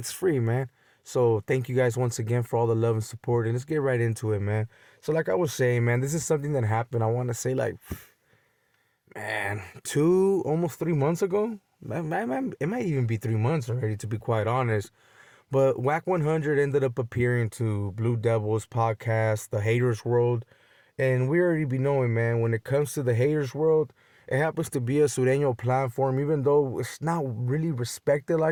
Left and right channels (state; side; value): identical; both; correlation 1.00